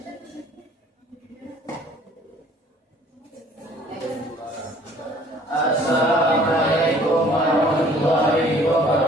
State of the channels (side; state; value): both; normal; correlation 0.55